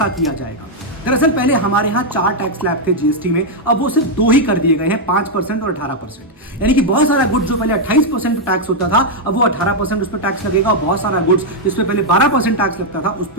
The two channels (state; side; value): normal; both; correlation -0.02